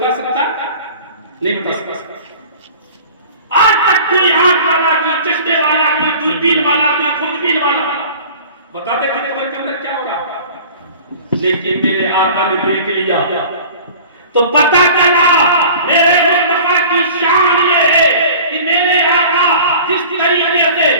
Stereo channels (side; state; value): both; inverted; correlation -0.43